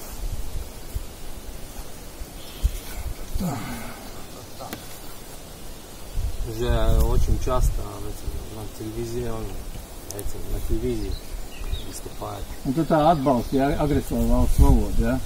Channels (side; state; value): both; identical; correlation 1.00